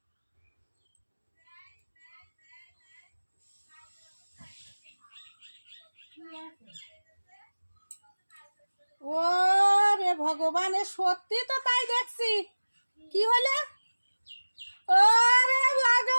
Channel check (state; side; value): inverted; both; correlation -1.00